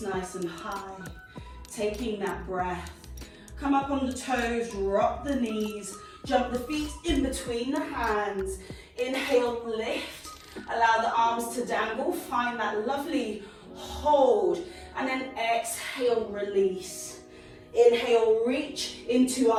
nice and high, taking that breath. Come up on the toes, drop the knees, jump the feet in between the hands. Inhale, lift, allow the arms to dangle, find that lovely hold, and then exhale, release. Inhale, reach into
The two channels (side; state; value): both; identical; correlation 1.00